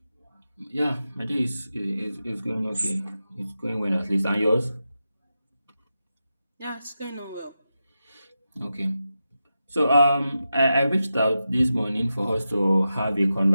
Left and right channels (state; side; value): inverted; both; correlation -0.90